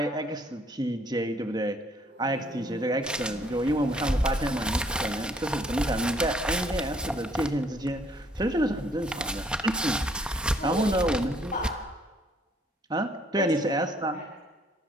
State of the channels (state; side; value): normal; both; correlation 0.64